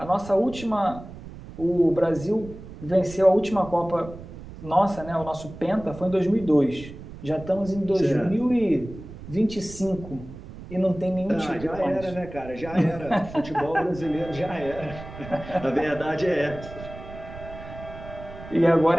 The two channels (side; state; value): right; noise; rumble, 14 dB below the sound